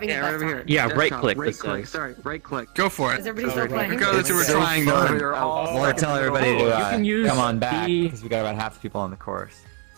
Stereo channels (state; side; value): quieter; left; 36.9 dB